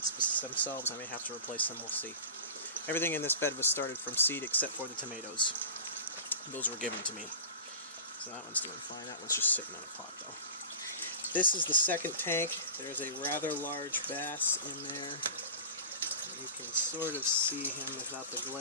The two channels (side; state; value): both; inverted; correlation -0.34